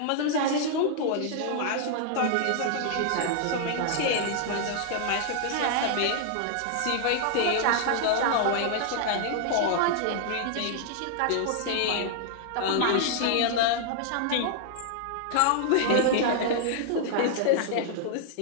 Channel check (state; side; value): different; both; correlation -0.01